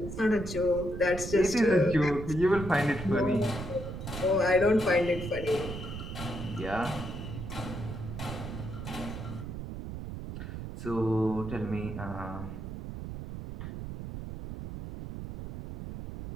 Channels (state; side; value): noise; right; rumble, 8 dB below the sound